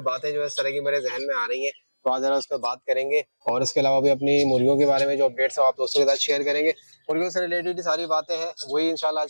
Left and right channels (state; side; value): inverted; both; correlation -1.00